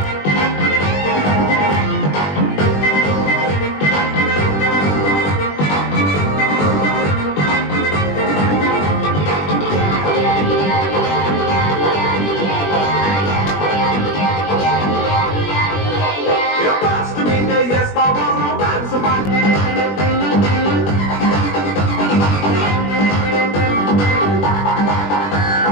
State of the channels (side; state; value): right; late; 20 ms